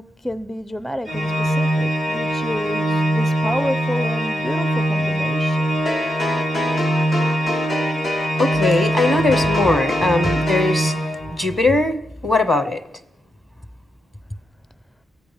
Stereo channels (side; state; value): both; normal; correlation 0.85